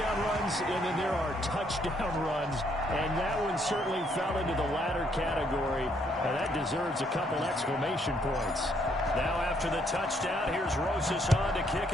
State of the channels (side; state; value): both; normal; correlation 0.70